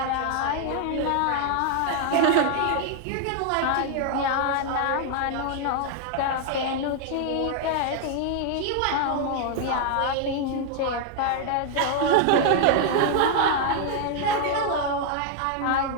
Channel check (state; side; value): different; both; correlation 0.00